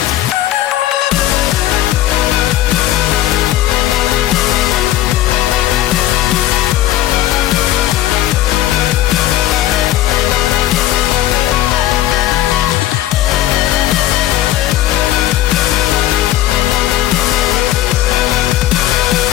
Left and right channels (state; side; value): quieter; right; 13.7 dB